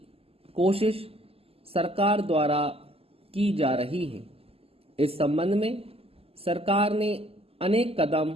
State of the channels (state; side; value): late; left; 0.28 ms